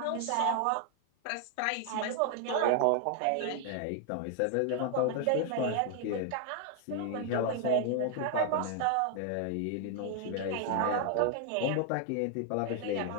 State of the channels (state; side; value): different; both; correlation 0.00